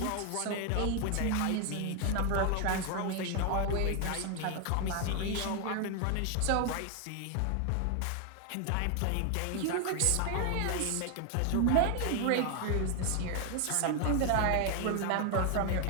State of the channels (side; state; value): both; different; correlation 0.01